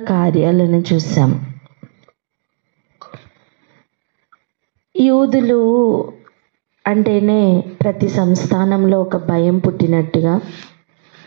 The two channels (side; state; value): left; silent; digital silence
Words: కార్యాలను చూసాం. యూదులు అంటేనే ప్రతి సంస్థానంలో ఒక భయం పుట్టినట్టుగా,